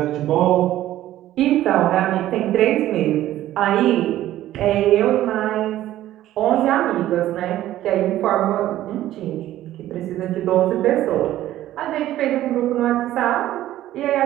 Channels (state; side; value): quieter; left; 13.8 dB